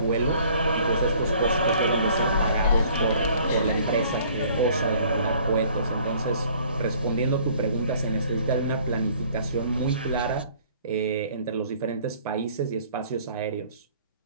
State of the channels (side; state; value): both; inverted; correlation -0.56